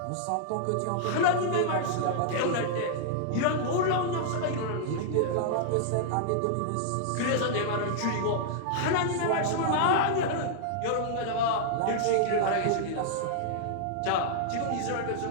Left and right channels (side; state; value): both; different; correlation -0.01